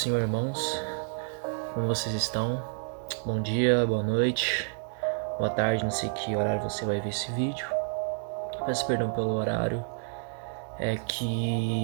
irmãos. Como vocês estão? Bom dia, boa noite, boa tarde, não sei que horário você vai ver esse vídeo. Peço perdão pelo horário. É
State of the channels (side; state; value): left; silent; 58 dB below the other